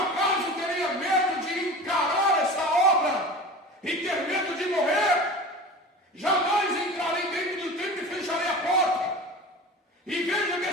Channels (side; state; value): both; normal; correlation 0.35